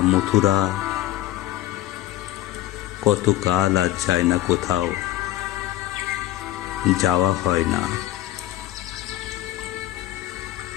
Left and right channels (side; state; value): right; quieter; 14.7 dB